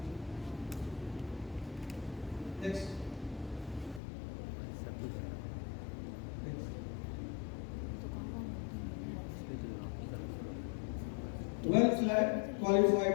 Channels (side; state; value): right; drops out; at 4.0 s